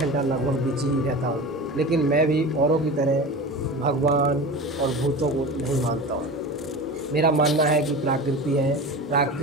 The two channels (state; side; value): normal; both; correlation 0.31